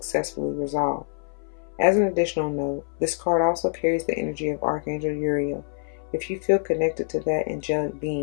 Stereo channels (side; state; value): right; silent; 59 dB below the other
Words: resolve. As an additional note, this card also carries the energy of Archangel Uriel. If you feel connected to that angelic